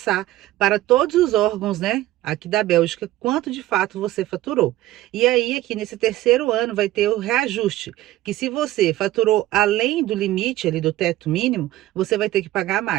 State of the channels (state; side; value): quieter; left; 15.7 dB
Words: para todos os órgãos, né, aqui da Bélgica, quanto de fato você faturou. E aí, aqui nesse terceiro ano, vai ter o reajuste, que se você faturou além do limite ali do teto mínimo, você vai ter que pagar